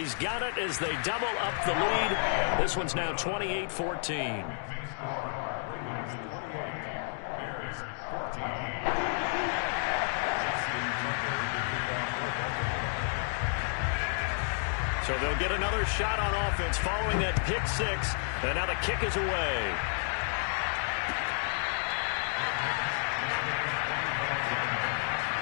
got it as they double up the lead. This one's now 28-14. So they'll get another shot on offense following that pick six. And now the kick is away.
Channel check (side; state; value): right; silent; 57 dB below the other